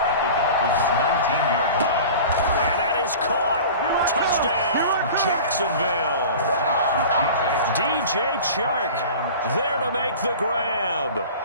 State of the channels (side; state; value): both; inverted; correlation -0.38